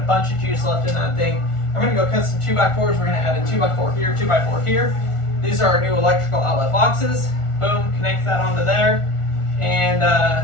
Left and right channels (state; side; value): late; right; 1.4 ms